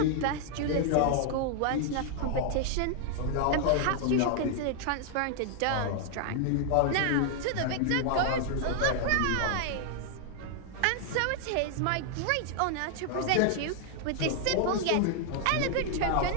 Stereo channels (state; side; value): different; both; correlation 0.00